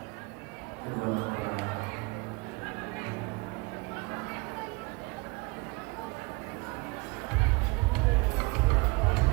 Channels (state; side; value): quieter; left; 27.1 dB